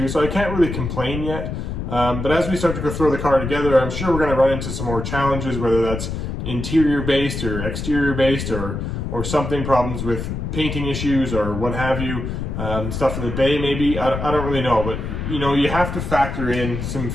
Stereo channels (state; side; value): noise; left; rumble, 5 dB below the sound